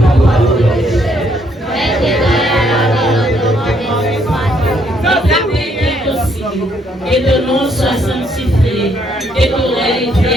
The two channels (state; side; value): normal; both; correlation 0.70